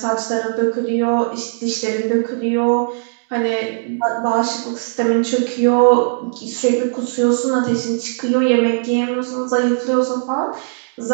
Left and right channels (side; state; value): left; silent; digital silence